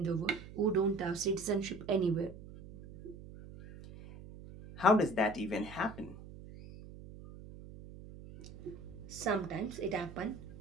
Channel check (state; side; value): noise; right; hum, 15 dB below the sound